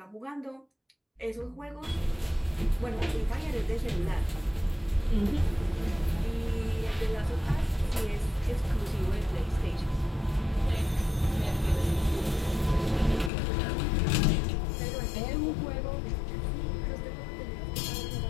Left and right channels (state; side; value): drops out; right; at 13.3 s